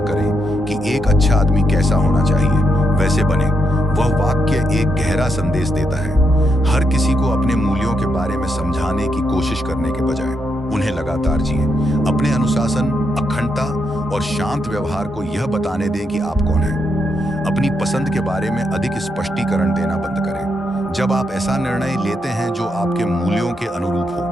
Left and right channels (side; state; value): both; normal; correlation 0.81